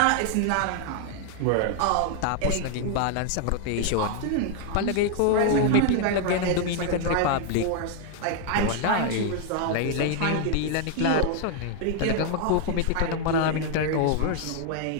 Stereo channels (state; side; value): different; both; correlation 0.00